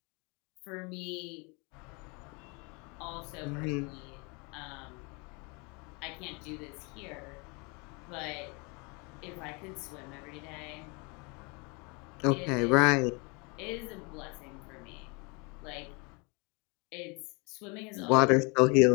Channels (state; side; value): quieter; right; 30.5 dB